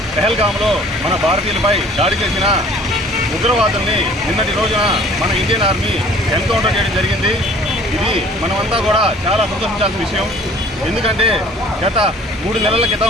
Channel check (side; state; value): both; normal; correlation 0.52